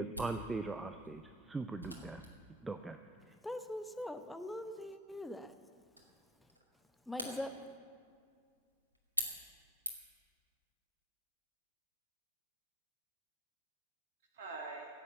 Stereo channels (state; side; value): normal; both; correlation 0.38